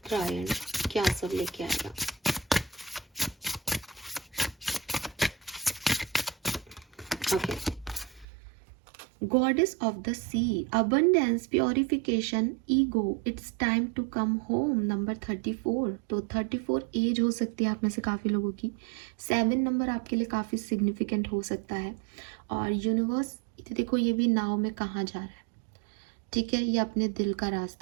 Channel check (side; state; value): left; drops out; at 8.2 s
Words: क्या सब लेके आएगा। Okay, goddess of the sea, abundance, purification, ego, it's time to come home, number 34। तो 34 एज हो सकती है आप में से काफ़ी लोगों की। 7 नंबर आपके लिए काफ़ी सिग्निफिकेंट हो सकता है। और यूनिवर्स देखो ये भी नाव में कहाँ जा रहा है, ठीक है, ये अपने दिल का